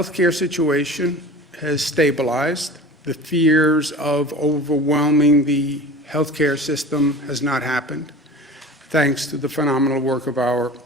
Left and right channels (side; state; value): both; normal; correlation 0.38